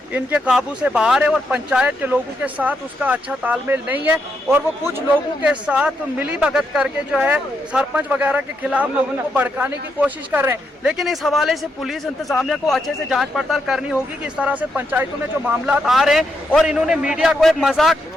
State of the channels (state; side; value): normal; both; correlation 0.80